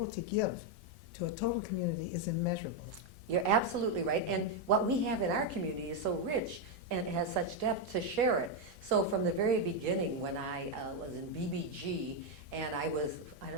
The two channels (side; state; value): both; normal; correlation 0.03